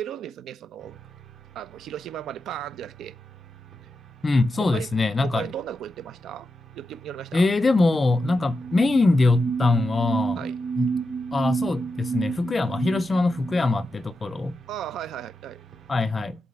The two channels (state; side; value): normal; both; correlation 0.88